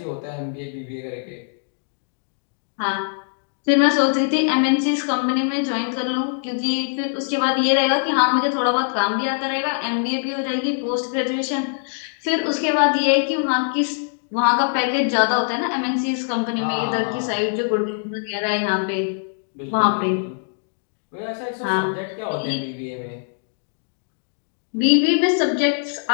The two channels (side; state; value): right; silent; digital silence